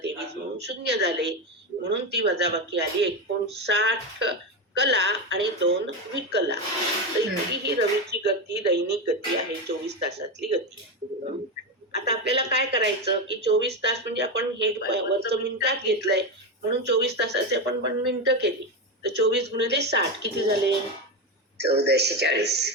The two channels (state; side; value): normal; both; correlation 0.14